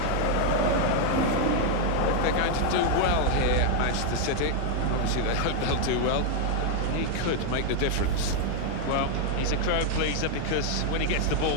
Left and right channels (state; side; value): different; both; correlation 0.00